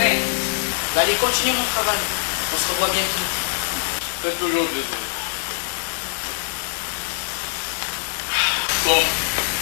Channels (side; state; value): right; silent; 64 dB below the other